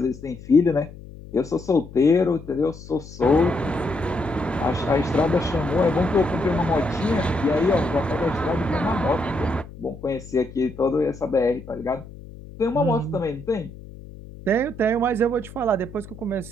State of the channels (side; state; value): left; noise; hum, 16 dB below the sound